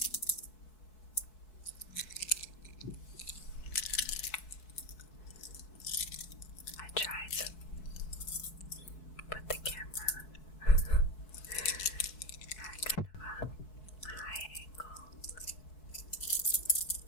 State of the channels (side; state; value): right; late; 4.6 ms